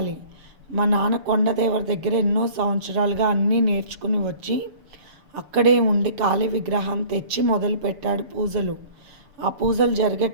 మా నాన్న కొండదేవరి దగ్గర ఎన్నో సంవత్సరాలుగా అన్నీ నేర్చుకుని వచ్చి అక్కడే ఉండి కాళీ విగ్రహాన్ని తెచ్చి మొదలుపెట్టాడు పూజలు. ఆ పూజలు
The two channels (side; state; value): left; late; 6.8 ms